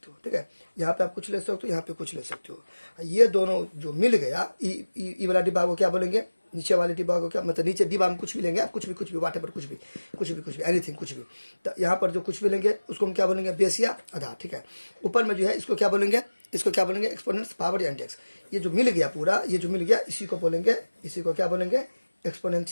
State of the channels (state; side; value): inverted; both; correlation -1.00